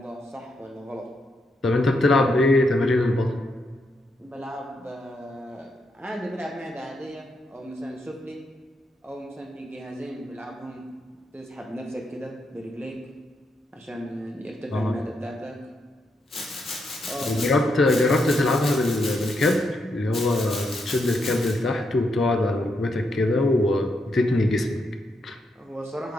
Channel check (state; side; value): normal; both; correlation 0.80